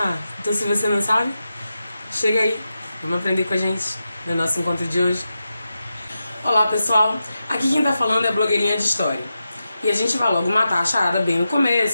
então se você não sabe, chega aí. Vamos aprender com a gente no nosso encontro de hoje. Olá, pessoal. Aqui quem tá falando é a blogueirinha de história. E a gente vai logo matar a charada bem no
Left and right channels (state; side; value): inverted; both; correlation -0.90